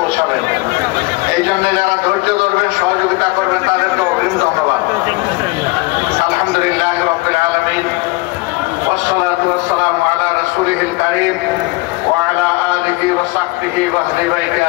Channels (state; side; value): quieter; right; 23.4 dB